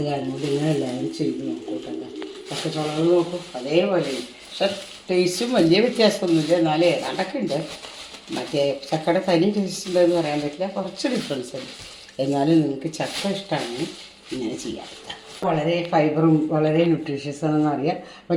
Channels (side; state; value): both; identical; correlation 1.00